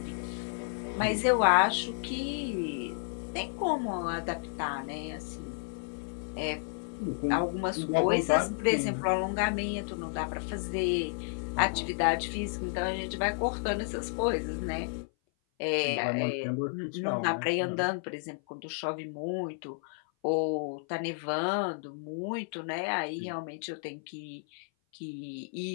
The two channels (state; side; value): silent; right; 56 dB below the other